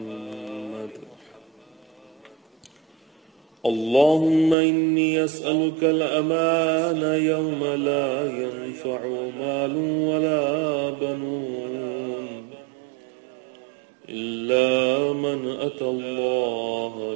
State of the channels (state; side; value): drops out; left; at 4.5 s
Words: اللهم إني أسألك الأمان يوم لا ينفع مال ولا بنون إلا من أتى